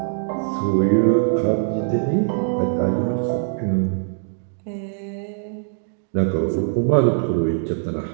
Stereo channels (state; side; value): silent; left; digital silence